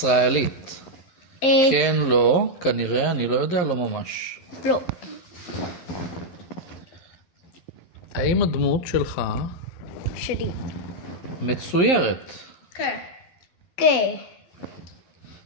כן, לא, כנראה, אני לא יודע, לא ממש. לא. האם הדמות שלך שלי. מצוירת? כן. כן.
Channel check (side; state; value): right; late; 12 ms